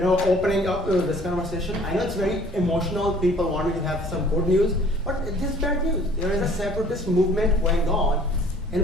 up this conversation. I know it's very emotional. People want me to have some good news, but this is bad news. There is a separatist movement going on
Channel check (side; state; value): both; normal; correlation 0.53